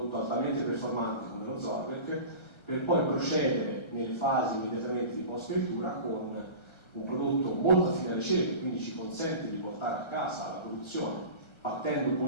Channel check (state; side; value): late; right; 1.3 ms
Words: altamente performante come lo Zorvec, per poi procedere nelle fasi immediatamente di post-fioritura con un prodotto molto affine alle cerche, quindi ci consente di portare a casa la produzione partendo